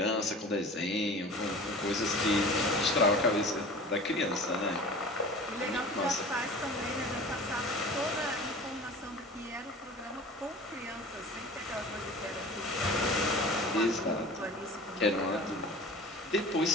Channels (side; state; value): both; normal; correlation 0.39